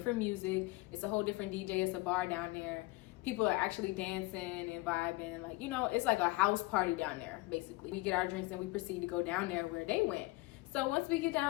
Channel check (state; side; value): quieter; right; 21.5 dB